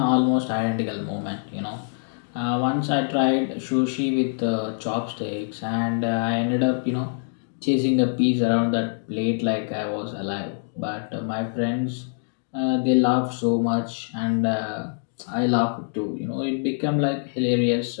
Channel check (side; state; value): right; silent; digital silence